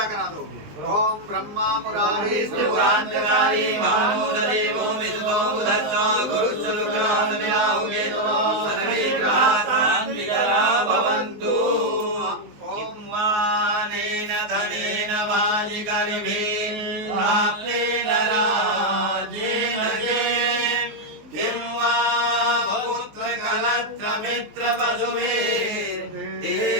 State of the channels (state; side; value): late; left; 19 ms